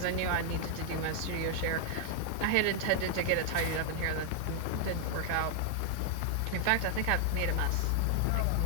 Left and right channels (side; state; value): both; different; correlation 0.00